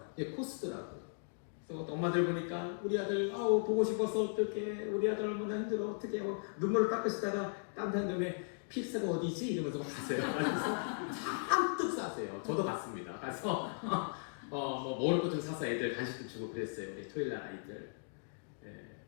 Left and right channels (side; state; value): right; silent; digital silence